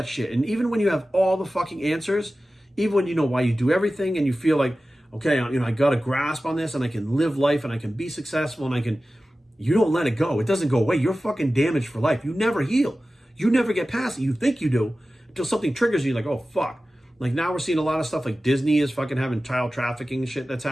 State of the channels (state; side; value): normal; both; correlation 0.95